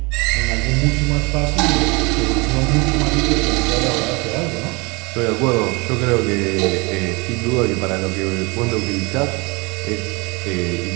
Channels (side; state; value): left; quieter; 27.3 dB